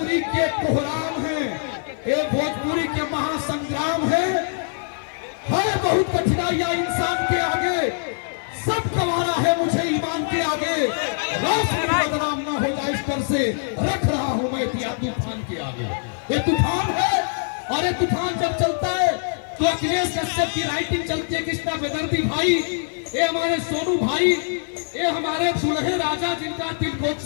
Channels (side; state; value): right; silent; 63 dB below the other